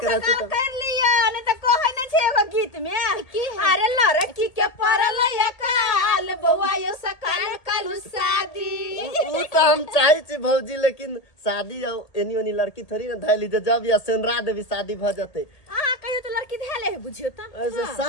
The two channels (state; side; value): late; right; 1.8 ms